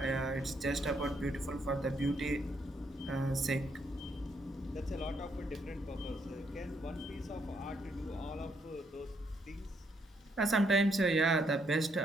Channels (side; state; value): both; normal; correlation 0.73